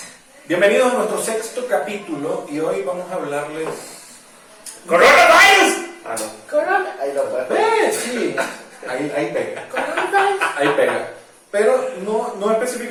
Bienvenidos a nuestro sexto capítulo y hoy vamos a hablarles... ¡Coronavirus! Ah, no. Corona. Ahí lo puedes. Sí, ahí pega. Ahí pega. Pero no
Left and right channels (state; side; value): identical; both; correlation 1.00